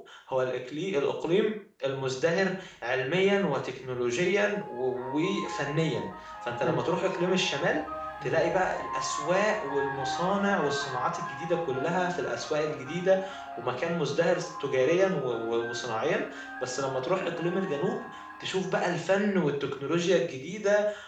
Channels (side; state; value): both; identical; correlation 1.00